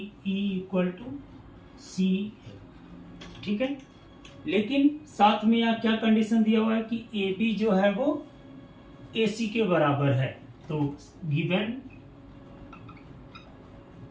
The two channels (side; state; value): both; identical; correlation 1.00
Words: equal to CF, ठीक है। लेकिन साथ में यहाँ क्या कंडीशन दिया हुआ है कि AB जो है वो AC के बराबर है, तो given